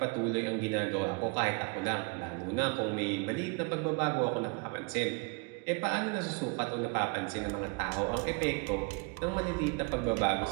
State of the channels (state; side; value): quieter; left; 31.5 dB